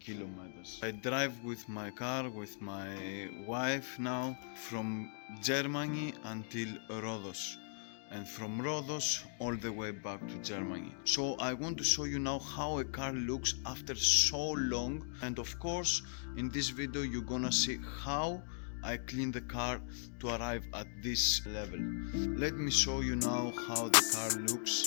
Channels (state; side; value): silent; right; digital silence